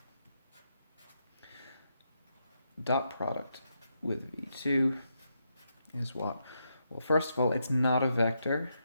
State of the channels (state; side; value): inverted; both; correlation -0.82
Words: dot product with v2 is what? Well, first of all, it's not a vector.